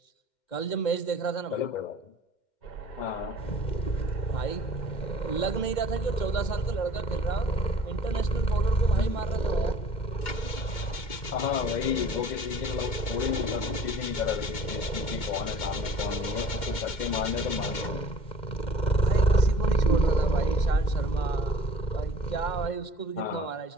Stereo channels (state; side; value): late; right; 2.2 ms